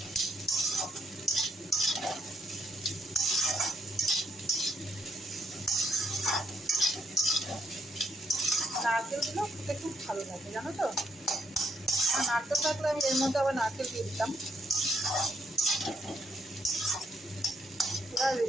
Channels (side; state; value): both; normal; correlation 0.74